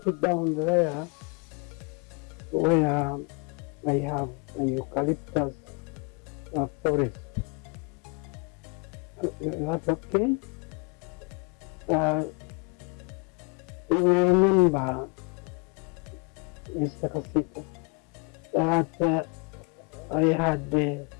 down there where I have a eucalyptus forest. Is that okay? You remember, Mr. Kasita, that I had, I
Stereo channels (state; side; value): quieter; right; 33.3 dB